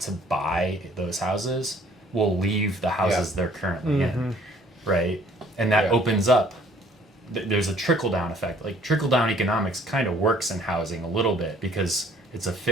to buy those houses will leave the houses they're currently in, right? And that opens up. There's a trickle-down effect. Like, trickle-down economics kind of works in housing a little bit, because it's a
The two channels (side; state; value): both; normal; correlation 0.58